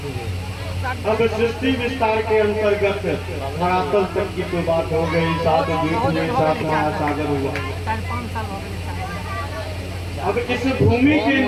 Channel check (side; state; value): both; identical; correlation 1.00